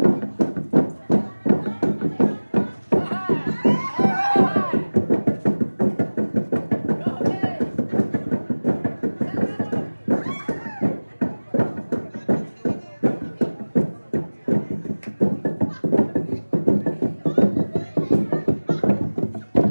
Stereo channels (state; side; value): inverted; both; correlation -1.00